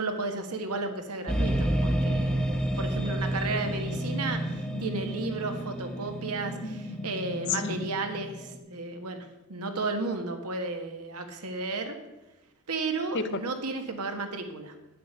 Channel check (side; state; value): both; normal; correlation 0.43